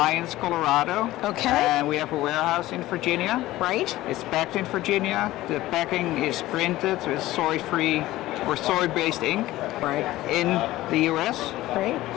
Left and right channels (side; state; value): right; quieter; 16.5 dB